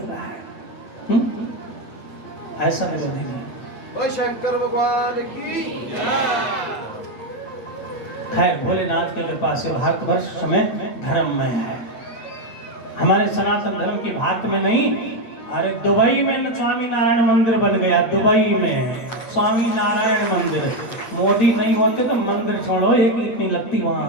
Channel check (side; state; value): right; late; 8.9 ms